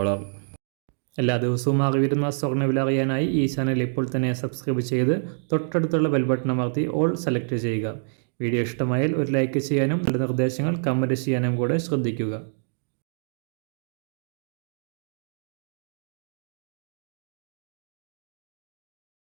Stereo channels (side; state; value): left; silent; digital silence